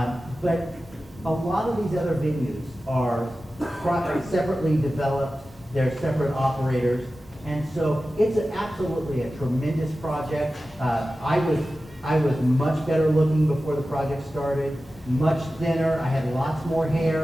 but a lot of these other venues are separately developed. They're separate operators, and so it's absolutely a tremendous project. I was much better looking before the project started, much thinner. I had lots more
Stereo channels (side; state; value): both; normal; correlation 0.94